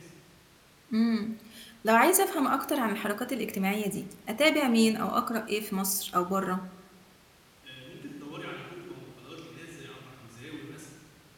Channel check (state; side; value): identical; both; correlation 1.00